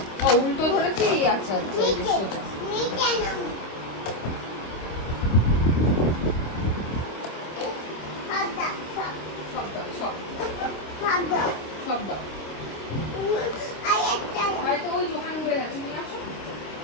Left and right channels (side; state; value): right; late; 26 ms